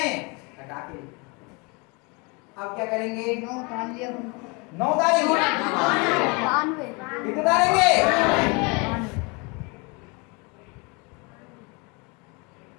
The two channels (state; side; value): quieter; right; 29.8 dB